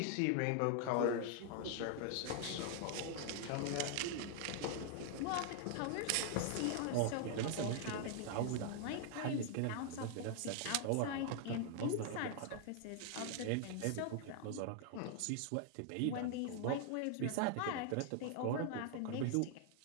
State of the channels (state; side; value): different; both; correlation 0.00